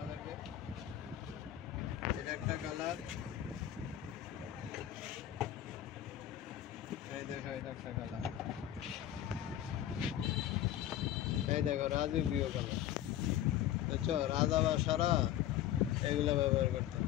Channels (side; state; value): right; quieter; 12.0 dB